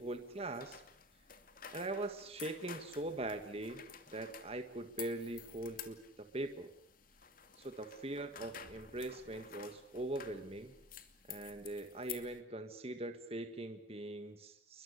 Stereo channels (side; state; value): both; normal; correlation 0.39